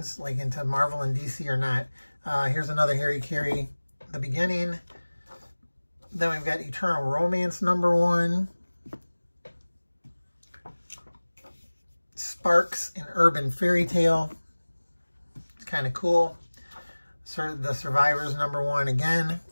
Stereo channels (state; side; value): inverted; both; correlation -1.00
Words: like into Marvel and DC or not. Here's another Harry Carey, the beginning. Then we've got Eternal Romance number 1. Sparks, an Urban Fairy Tale. It's kind of cool. The Survivors number 1 again